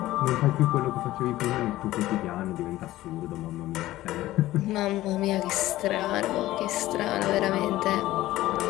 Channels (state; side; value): quieter; right; 15.9 dB